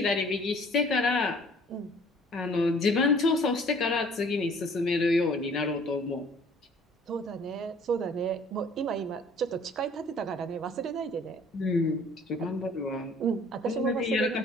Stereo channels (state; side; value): normal; both; correlation 0.54